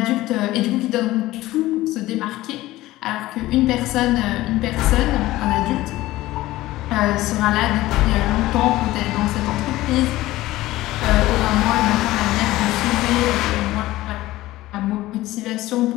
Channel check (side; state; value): right; quieter; 17.1 dB